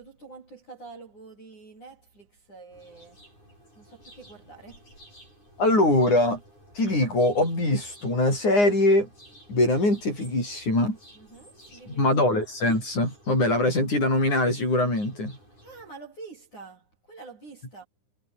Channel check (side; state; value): right; late; 9.8 ms